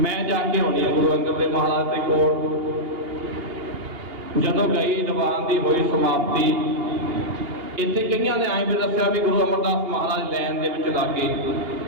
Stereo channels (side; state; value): left; late; 2.8 ms